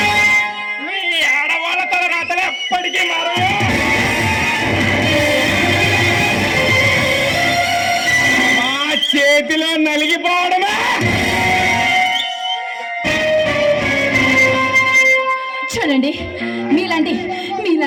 మీ ఆడవాళ్ళ తల రాతలు ఎప్పటికీ మారదు. మా చేతిలో నలిగిపోవడమే. చూడండి,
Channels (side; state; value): both; identical; correlation 1.00